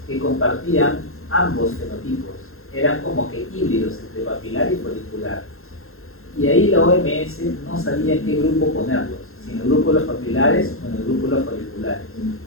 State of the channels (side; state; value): right; late; 0.61 ms